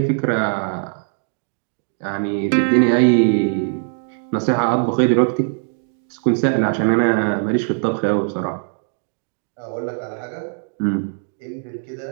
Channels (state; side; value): silent; left; digital silence